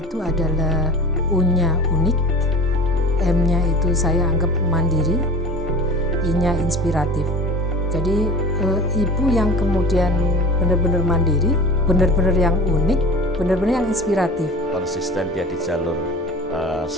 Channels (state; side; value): normal; both; correlation 0.37